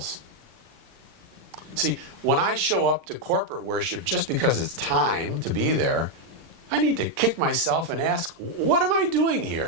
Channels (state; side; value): late; left; 39 ms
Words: See, when I show up to corporate worship just because it's time to be there, I need to kick myself and ask, what am I doing